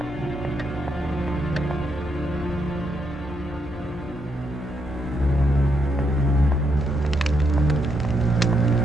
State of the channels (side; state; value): both; normal; correlation 0.78